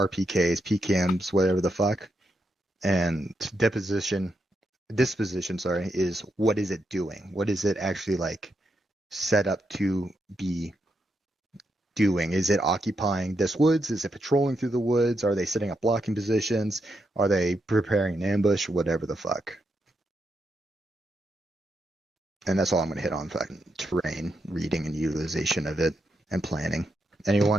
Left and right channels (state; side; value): normal; both; correlation 0.83